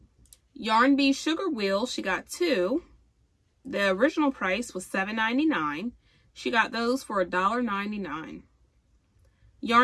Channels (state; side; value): identical; both; correlation 1.00